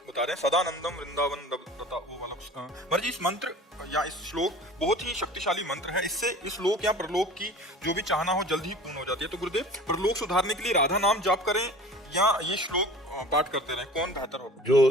बता रहे हैं, सदानंदम वृंदावन दत्ता, वो वाला महाराज जी। इस मंत्र या इस श्लोक बहुत ही शक्तिशाली मंत्र है। इससे इस लोक या परलोक की जो भी चाहना हो जल्द ही पूर्ण हो जाती है। तो गुरुदेव, परलोक सुधारने के लिए राधा नाम जाप करें या ये श्लोक पाठ करते रहें, कौन बेहतर होगा?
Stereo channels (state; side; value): normal; both; correlation 0.42